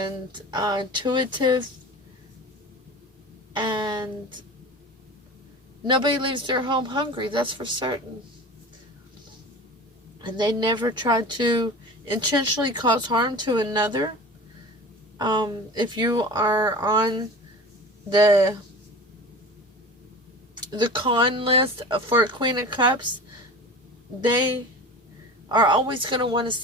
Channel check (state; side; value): normal; both; correlation 0.36